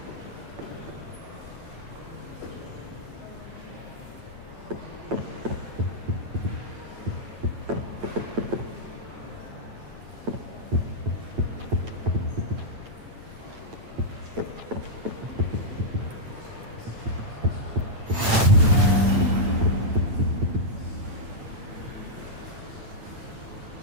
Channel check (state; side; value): late; left; 8.9 ms